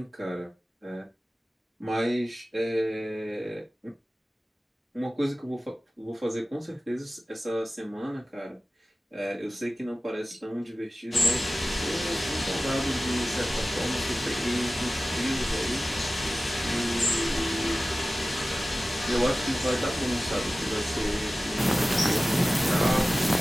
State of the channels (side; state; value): both; normal; correlation 0.96